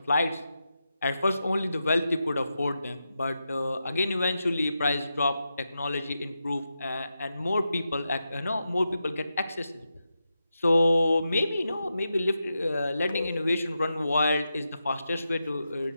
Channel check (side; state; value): both; inverted; correlation -0.88